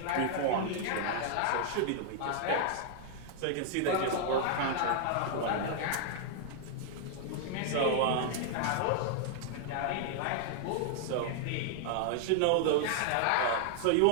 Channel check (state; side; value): different; both; correlation 0.00